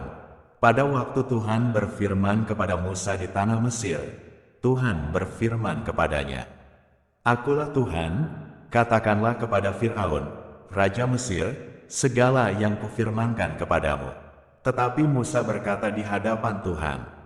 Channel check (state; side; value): identical; both; correlation 1.00